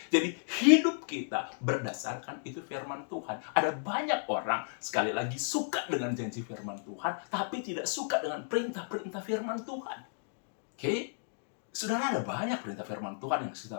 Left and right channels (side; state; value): right; silent; digital silence